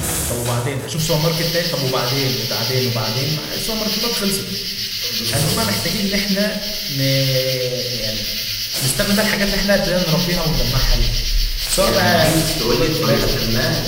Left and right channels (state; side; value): identical; both; correlation 1.00